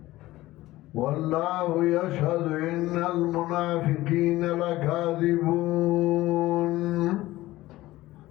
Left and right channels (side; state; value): right; quieter; 17.2 dB